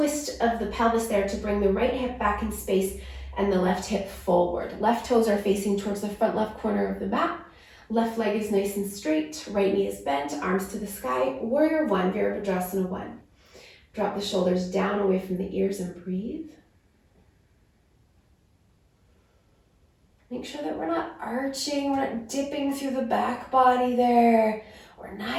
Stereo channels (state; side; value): identical; both; correlation 1.00